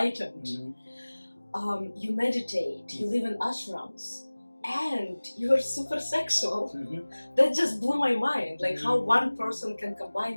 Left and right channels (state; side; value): inverted; both; correlation -1.00